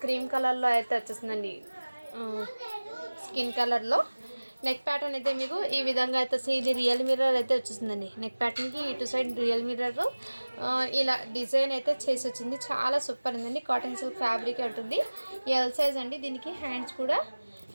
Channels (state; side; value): inverted; both; correlation -1.00